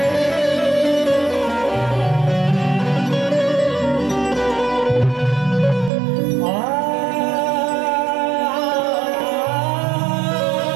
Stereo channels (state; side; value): drops out; left; at 5.9 s